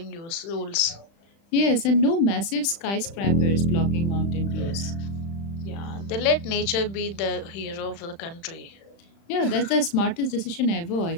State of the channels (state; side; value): late; right; 35 ms